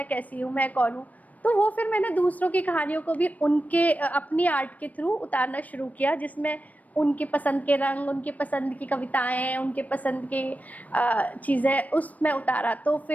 कैसी हूँ, मैं कौन हूँ। तो वो फिर मैंने दूसरों की कहानियों को भी उनके अपनी आर्ट के थ्रू उतारना शुरू किया, जिसमें उनकी पसंद के रंग, उनकी पसंद की कविताएं, उनके पसंद की चीज़ें उसमें उतारा। तो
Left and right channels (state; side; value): late; right; 0.073 ms